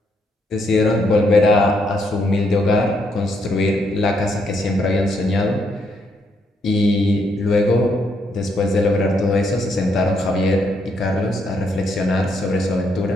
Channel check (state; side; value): normal; both; correlation 0.75